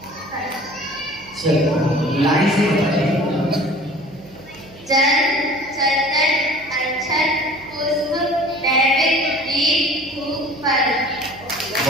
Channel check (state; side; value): noise; right; hum, 22 dB below the sound